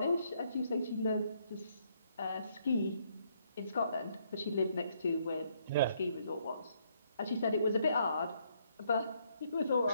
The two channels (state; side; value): inverted; both; correlation -0.71